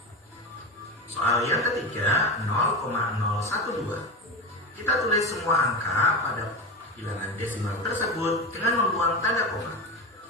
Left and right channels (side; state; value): both; normal; correlation 0.20